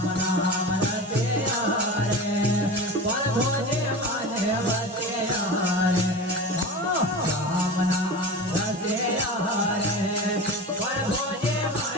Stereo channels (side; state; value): both; normal; correlation 0.30